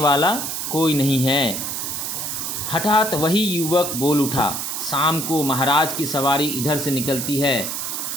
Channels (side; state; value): right; noise; hiss, 3 dB below the sound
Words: कोई नहीं है। हठात वही युवक बोल उठा, शाम को महाराज की सवारी इधर से निकलती है।